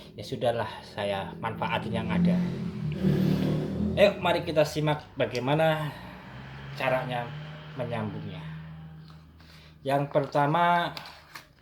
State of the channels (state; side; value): identical; both; correlation 1.00